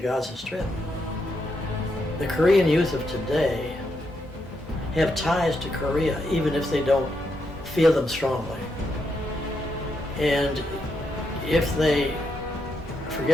Strip. The Korean youth of today have ties to Korea, even if they don't feel them strongly. And if they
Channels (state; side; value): normal; both; correlation 0.81